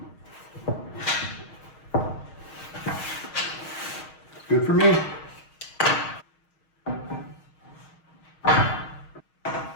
Good for me.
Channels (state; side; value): late; right; 6.4 ms